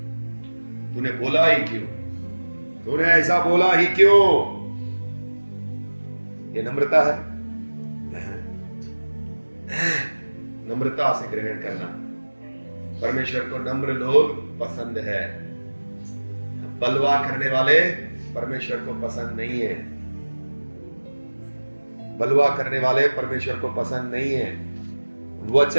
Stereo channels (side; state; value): both; inverted; correlation -1.00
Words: तूने बोला ही क्यों, तूने ऐसा बोला ही क्यों? ये नम्रता है। नम्रता से ग्रहण करना। परमेश्वर को नम्र लोग पसंद है, बलवा करने वाले परमेश्वर को पसंद नहीं है। बलवा करने वाले परमेश्वर को पसंद नहीं है।